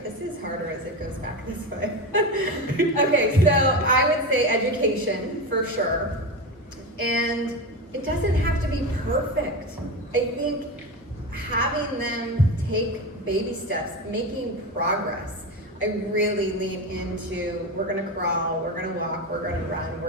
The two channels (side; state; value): both; normal; correlation 0.21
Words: This is harder as it goes back this way. Okay, so I would say education for sure. And it doesn't have to be perfect. I think having them take baby steps, making progress. I really lean into, we're gonna crawl, we're gonna walk, we're gonna run,